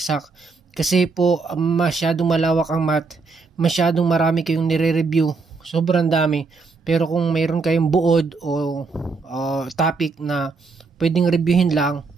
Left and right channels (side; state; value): left; quieter; 4.3 dB